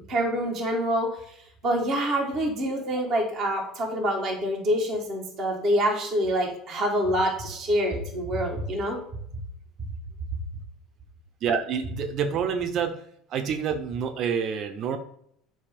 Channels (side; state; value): both; normal; correlation 0.52